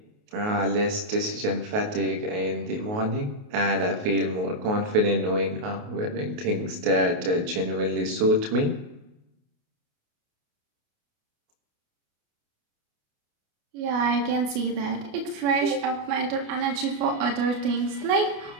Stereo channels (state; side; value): late; left; 28 ms